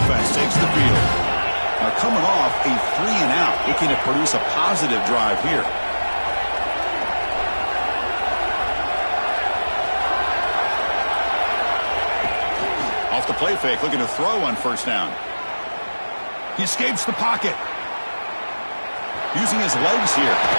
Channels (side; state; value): both; inverted; correlation -1.00